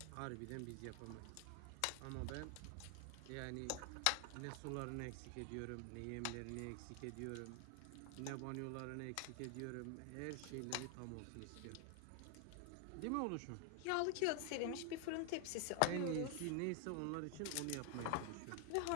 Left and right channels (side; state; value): both; different; correlation 0.00